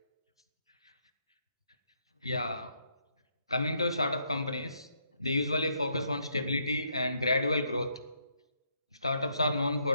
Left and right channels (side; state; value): both; inverted; correlation -0.74